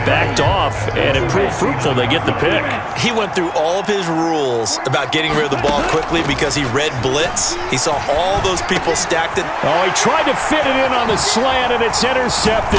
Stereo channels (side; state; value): both; identical; correlation 1.00